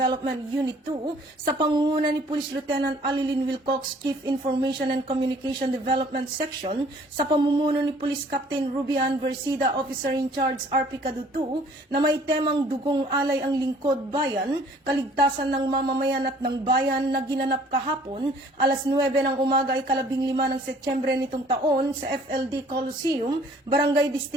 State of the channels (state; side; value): normal; both; correlation 0.56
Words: Unit 2 sa pangunguna ni Police Lieutenant Alilyn Wilcox, Chief Information and Communication Development Section, sa pamumuno ni Police Captain Rubian Versida, Officer in Charge RP Cadu 2, na may temang dugong alay ang lingkod bayan, kaligtasan ng mamamayan at ng bayan na ginanap kahapon, alas 9 ng umaga ay 15 ng Setyembre nitong taon sa FLD Coliseum, Barangay